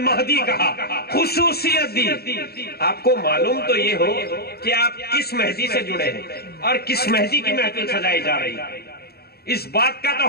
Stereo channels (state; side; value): late; right; 0.46 ms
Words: کہا، خصوصیت دی۔ آپ کو معلوم تو یہ ہو کہ آپ کس مہدی سے جڑے ہیں اور کس مہدی کی محفل سجائی جا رہی ہے، اس بات کا